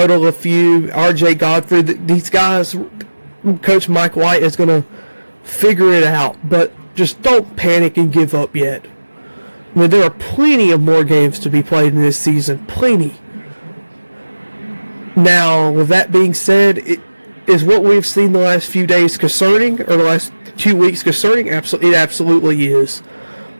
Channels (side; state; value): both; inverted; correlation -1.00